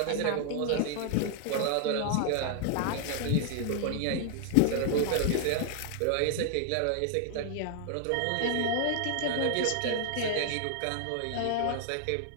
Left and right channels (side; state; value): both; different; correlation 0.00